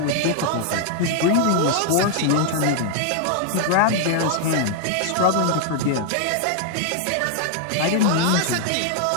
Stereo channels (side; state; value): both; different; correlation 0.00